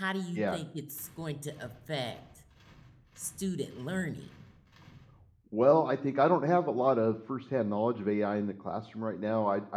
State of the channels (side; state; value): both; identical; correlation 1.00